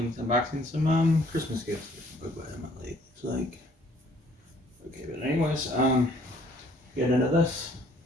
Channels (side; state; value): both; normal; correlation 0.60